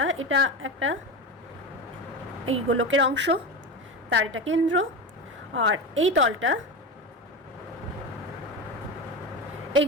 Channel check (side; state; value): both; normal; correlation 0.22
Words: এটা একটা এই গোলকের অংশ, তার এটা কেন্দ্র, আর এই তলটা এই